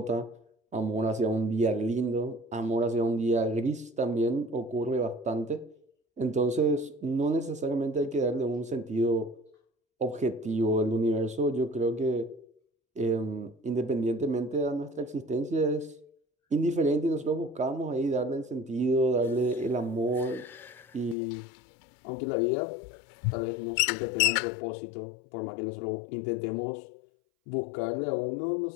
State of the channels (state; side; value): drops out; right; at 21.2 s